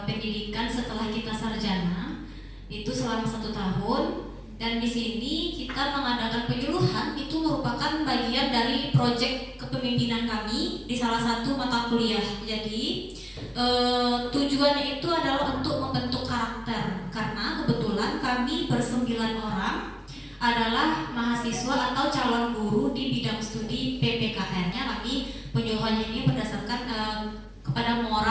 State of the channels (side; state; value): both; identical; correlation 1.00